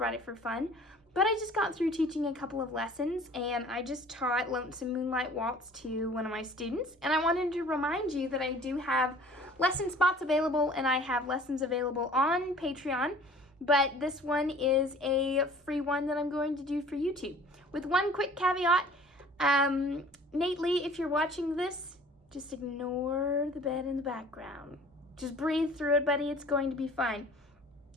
it for fun, but I just got through teaching a couple of lessons, and I just taught Lonesome, Moonlight, Waltz to one of my students, and I wanted to remind you that I do have lesson spots available, and I have lessons available on Patreon. But this one is a free one that I'm going to do for YouTube. With one quick caveat, Nate Lee, if you're watching this, just ignore the bed in the background. Just breathe through it, buddy. It's going to be fine.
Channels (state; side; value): normal; both; correlation 0.49